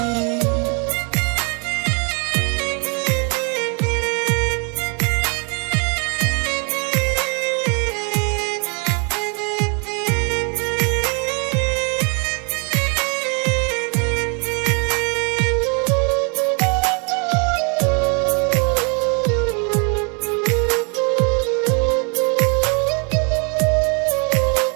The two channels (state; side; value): quieter; left; 36.4 dB